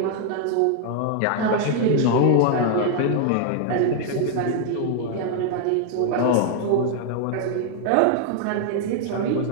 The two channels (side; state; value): both; different; correlation 0.00